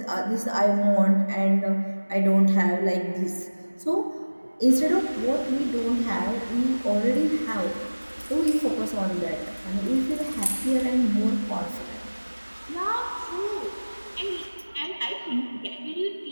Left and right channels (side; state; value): both; inverted; correlation -1.00